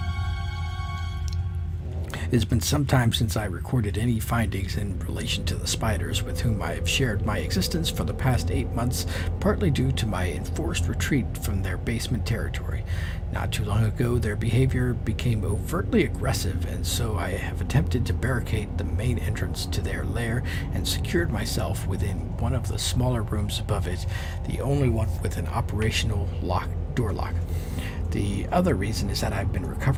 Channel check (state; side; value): identical; both; correlation 1.00